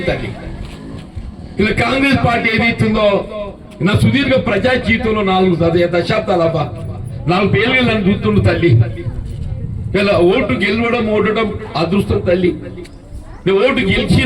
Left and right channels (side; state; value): both; identical; correlation 1.00